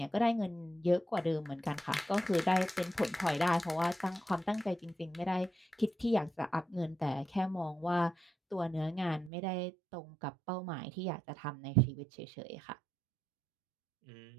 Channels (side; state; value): left; drops out; at 9.3 s